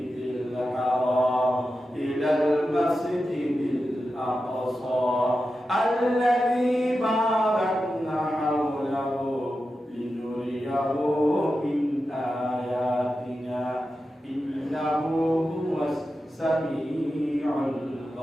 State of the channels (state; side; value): normal; both; correlation 0.91